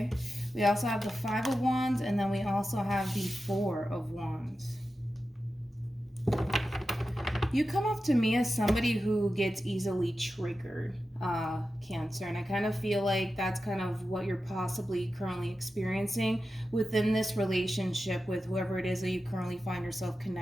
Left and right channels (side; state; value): both; normal; correlation 0.92